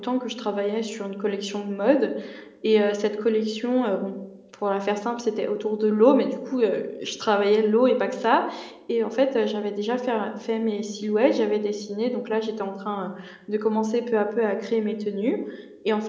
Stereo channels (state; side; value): identical; both; correlation 1.00